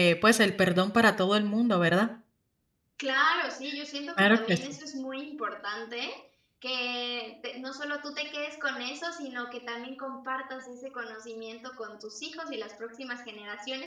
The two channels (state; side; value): identical; both; correlation 1.00